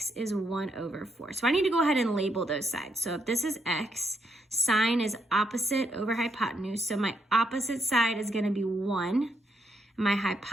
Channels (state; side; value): normal; both; correlation 0.78